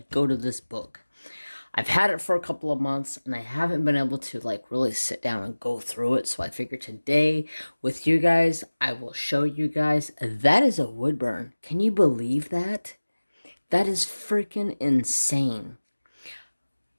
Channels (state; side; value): inverted; both; correlation -1.00